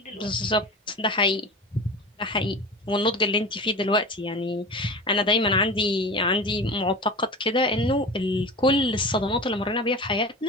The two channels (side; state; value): both; normal; correlation 0.32